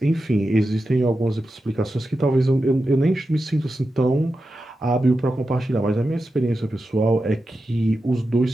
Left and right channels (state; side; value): normal; both; correlation 0.91